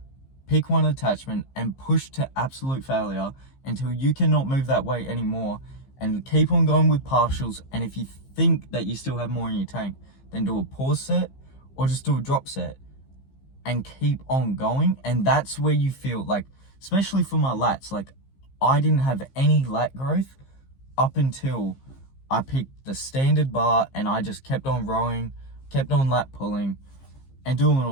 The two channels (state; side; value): late; right; 15 ms